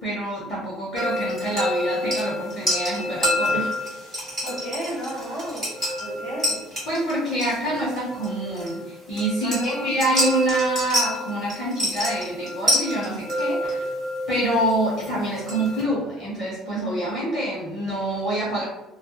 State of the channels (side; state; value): both; normal; correlation 0.53